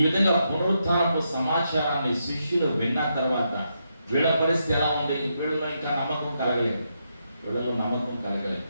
విధంగా పునరుత్థానపు సమాచారాన్ని శిష్యులు విన్న తర్వాత వీళ్ళ పరిస్థితి ఎలా ఉంది? వీళ్ళలో ఇంకా నమ్మకం కలగలేదు.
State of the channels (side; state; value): both; inverted; correlation -0.82